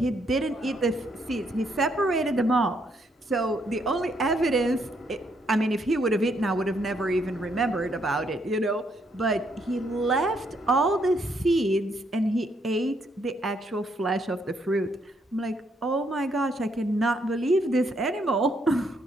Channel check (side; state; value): both; normal; correlation 0.73